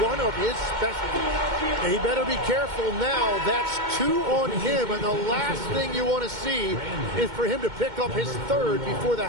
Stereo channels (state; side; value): late; left; 2.2 ms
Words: one of his specialties. And he better be careful now. That's 2 on him, and the last thing you want to see is for him to pick up his third before the